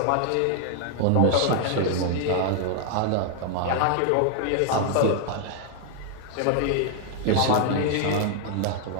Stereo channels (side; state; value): both; different; correlation 0.00